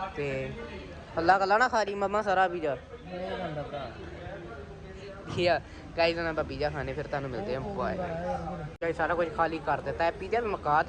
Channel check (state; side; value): identical; both; correlation 1.00